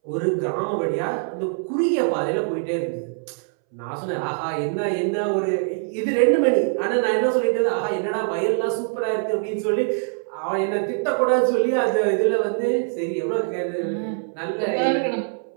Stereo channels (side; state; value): left; silent; 63 dB below the other